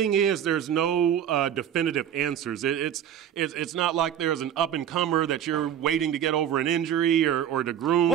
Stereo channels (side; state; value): left; quieter; 9.5 dB